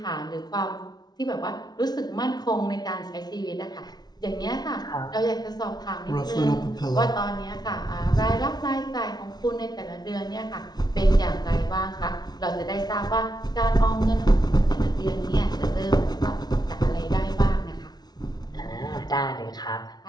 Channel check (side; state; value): right; late; 0.19 ms